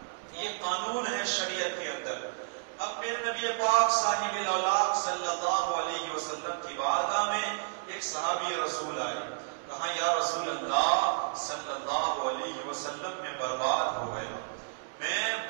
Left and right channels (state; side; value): silent; left; digital silence